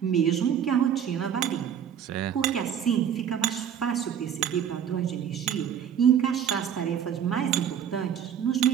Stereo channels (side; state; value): left; quieter; 8.7 dB